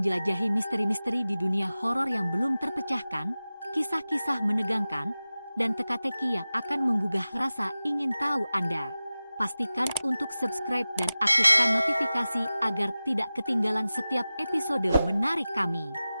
misteri-misteri di dunia horor yang belum terpecahkan, kisah-kisah menegangkan, dan teka-teki yang akan menggugah rasa ingin tahu Anda. Pastikan untuk subscribe dan aktifkan notifikasi agar tidak ketinggalan setiap episode menarik kami.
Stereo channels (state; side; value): inverted; both; correlation -0.96